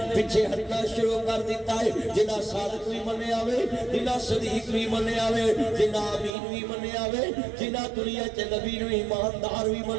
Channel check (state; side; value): drops out; left; at 6.3 s